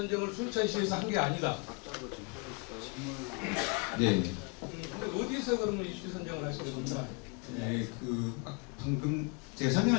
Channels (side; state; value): right; quieter; 32.2 dB